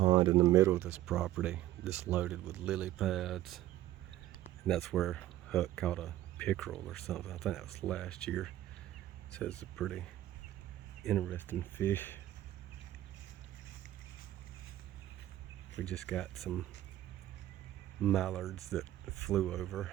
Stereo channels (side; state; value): left; quieter; 14.1 dB